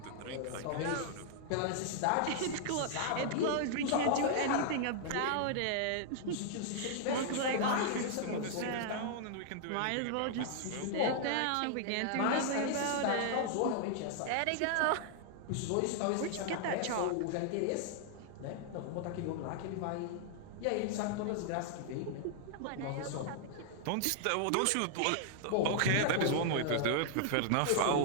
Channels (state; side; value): different; both; correlation -0.01